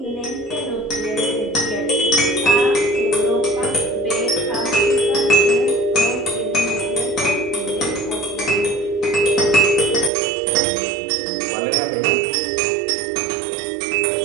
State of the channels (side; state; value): left; drops out; at 10.1 s